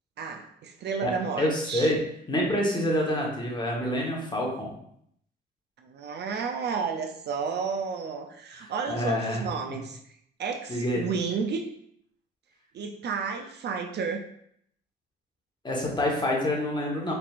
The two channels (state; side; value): normal; both; correlation 0.43